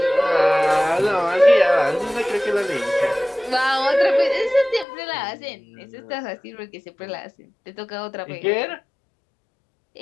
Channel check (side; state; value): right; drops out; at 4.9 s